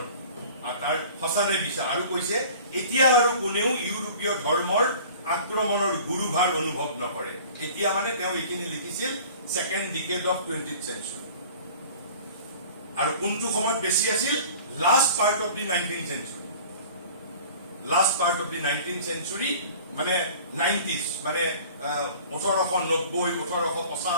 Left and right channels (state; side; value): inverted; both; correlation -0.45